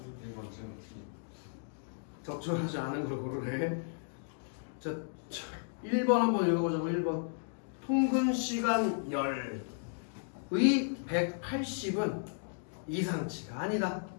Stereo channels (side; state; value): right; silent; digital silence